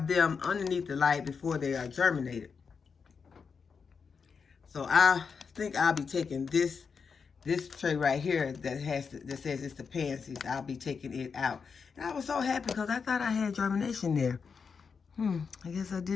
them underneath the light before they are germinated. So I think I'll be taking this tray right here that says it's the pansies. I'll be taking it out. And I was so happy because I thought I had germination there. I guess I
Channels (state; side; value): quieter; right; 5.7 dB